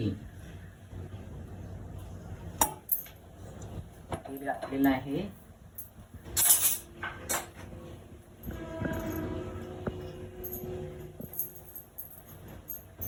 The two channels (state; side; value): identical; both; correlation 1.00